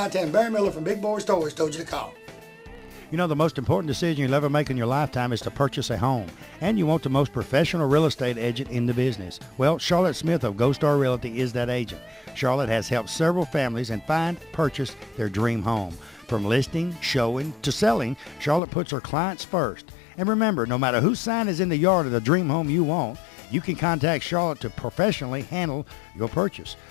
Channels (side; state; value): right; drops out; at 18.6 s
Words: Tell him Barry Miller from Big Boyz Toyz told you to call. You know, the most important decision you'll ever make in your lifetime is to purchase a home. And you want the most professional real estate agent in the business. Well, Charlotte Smith of Gold Star Realty is that agent. Charlotte has helped several families and purchase their dream home. From listing, showing, to selling, Charlotte puts her clients first. And remember, no matter whose sign is in the yard of the dream home you want, you can contact Charlotte to professionally handle your purchase.